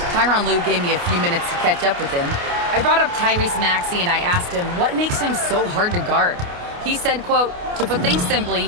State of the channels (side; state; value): left; late; 29 ms